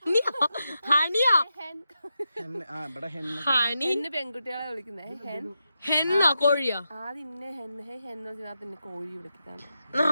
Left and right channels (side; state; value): both; inverted; correlation -0.87